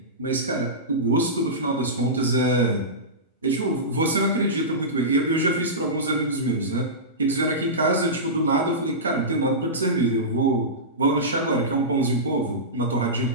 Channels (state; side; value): normal; both; correlation -0.18